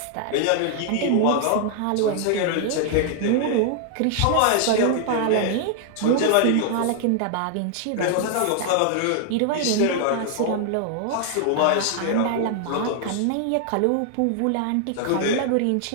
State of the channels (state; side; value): different; both; correlation -0.01